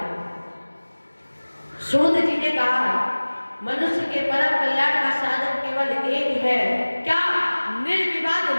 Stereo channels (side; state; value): both; inverted; correlation -1.00